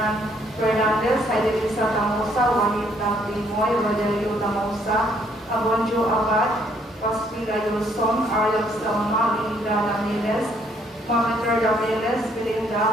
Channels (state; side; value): normal; both; correlation 0.67